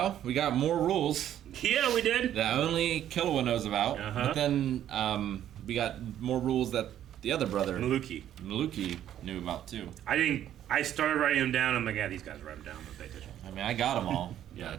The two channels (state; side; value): quieter; left; 11.2 dB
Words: we got more rules Yeah, we did. that only Killua knows about. Uh-huh. But then we got more rules that the other brother, Maluki. Maluki, knew about too. I started writing them down. I'm like, yeah, these guys write them down. Don't pay attention. I mean, I got them all. Yeah.